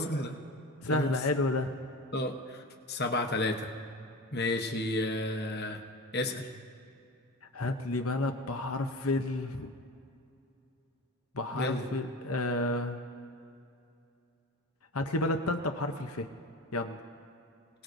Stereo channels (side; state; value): both; normal; correlation 0.31